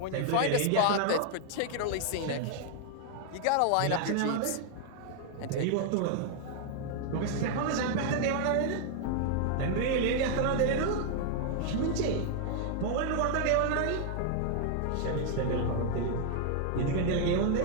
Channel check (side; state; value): both; different; correlation 0.00